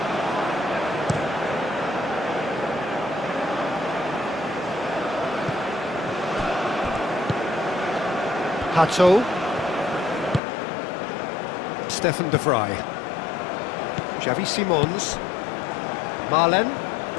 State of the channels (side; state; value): right; drops out; at 10.4 s